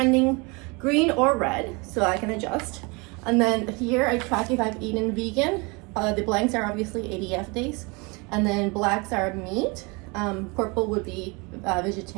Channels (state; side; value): quieter; left; 28.5 dB